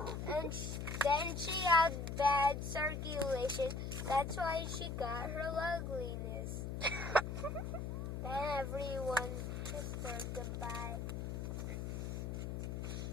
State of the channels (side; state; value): left; noise; hum, 4 dB below the sound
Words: and then she had bad circulation. That's why she got her ugliness. Then everyone kissed her goodbye.